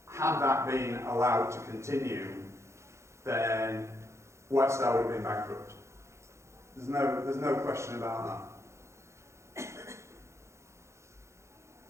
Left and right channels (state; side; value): late; left; 0.14 ms